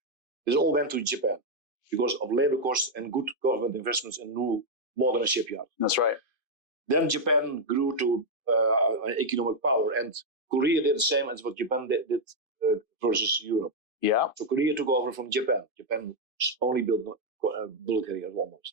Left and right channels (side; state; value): left; late; 2.5 ms